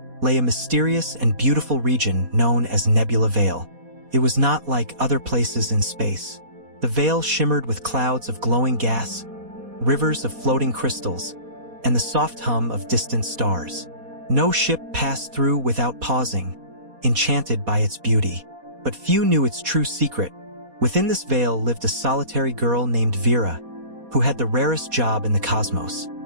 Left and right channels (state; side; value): late; left; 4.2 ms